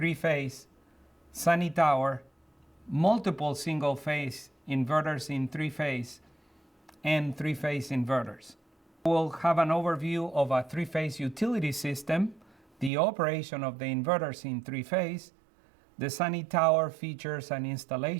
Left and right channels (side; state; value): left; drops out; at 12.9 s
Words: sunny tower, multiple single-phase inverters in three-phase, and three-phase inverters. We'll have an overview of a three-phase utility system, the operation of the inverters in three-phase, the sunny tower features and